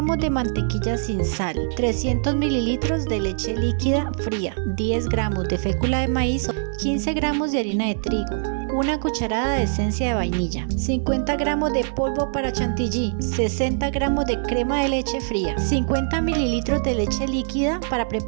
de mantequilla sin sal, 300 mililitros de leche líquida fría, 10 gramos de fécula de maíz, 15 gramos de harina de trigo, una cucharada de esencia de vainilla, 50 gramos de polvo para chantilly, 60 gramos de crema de leche fría, 50 mililitros de leche líquida para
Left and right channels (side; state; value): left; silent; digital silence